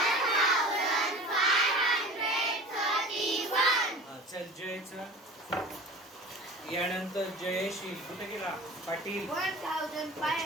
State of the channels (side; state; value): both; normal; correlation 0.38